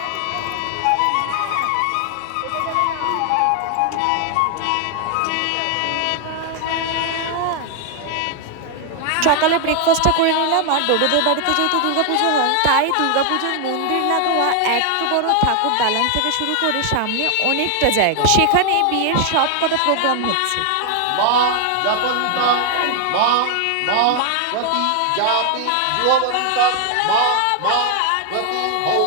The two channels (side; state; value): both; different; correlation 0.00